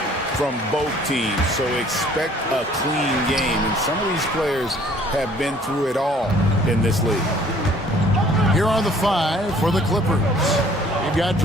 from both teams, so expect a clean game. And some of these players have been through it all in this league. Here are the five for the Clippers. You've got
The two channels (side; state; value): both; normal; correlation 0.56